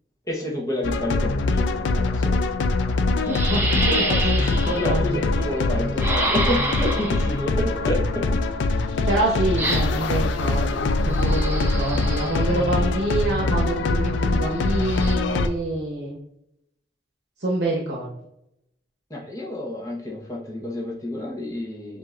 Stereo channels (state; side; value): normal; both; correlation 0.56